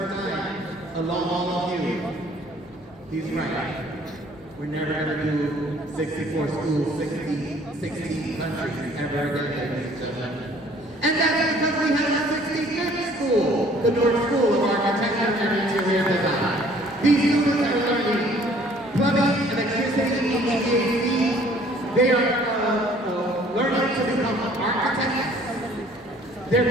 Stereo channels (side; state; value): both; normal; correlation 0.56